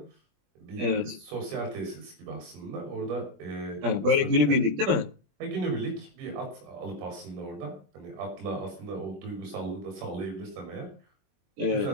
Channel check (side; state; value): left; late; 21 ms